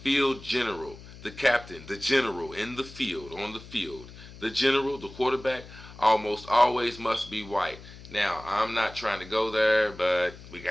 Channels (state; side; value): noise; left; hum, 17 dB below the sound